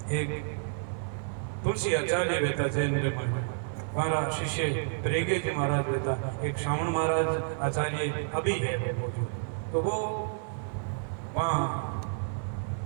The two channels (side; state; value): left; silent; digital silence